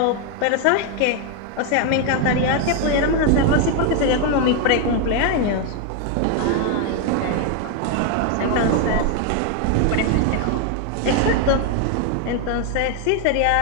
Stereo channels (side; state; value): both; different; correlation 0.01